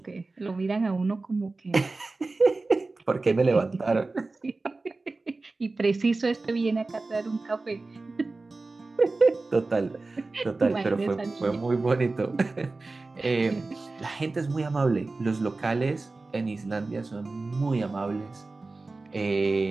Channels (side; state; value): left; quieter; 3.5 dB